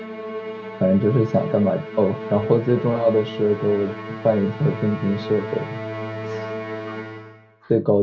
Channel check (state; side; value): identical; both; correlation 1.00